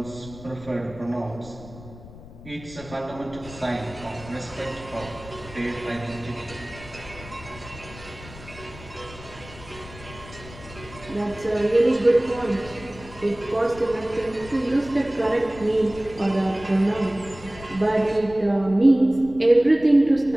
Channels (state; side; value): noise; left; rumble, 17 dB below the sound